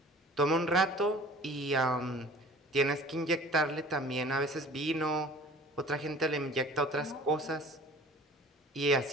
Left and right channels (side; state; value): both; normal; correlation 0.47